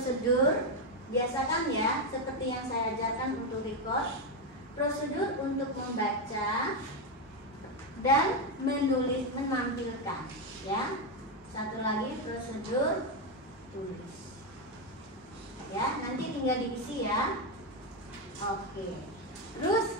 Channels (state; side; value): normal; both; correlation 0.06